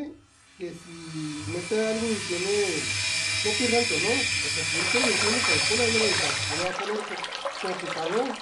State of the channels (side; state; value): both; identical; correlation 1.00